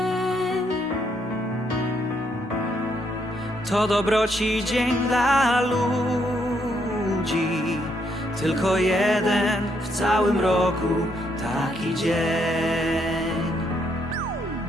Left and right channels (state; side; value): normal; both; correlation 0.74